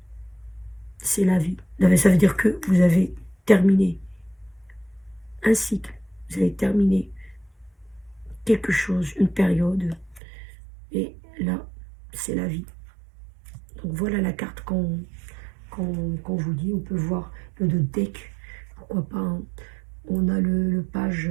c'est la vie. Ça veut dire que vous avez terminé un cycle, vous avez terminé quelque chose, une période, et là, c'est la vie. Donc voilà la carte qu'on vous dit. On peut voir le deck, pourquoi pas, hein. On a le page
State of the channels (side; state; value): left; drops out; at 10.2 s